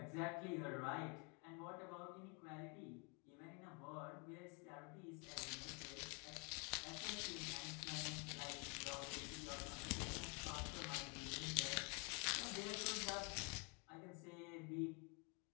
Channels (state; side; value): quieter; right; 33.2 dB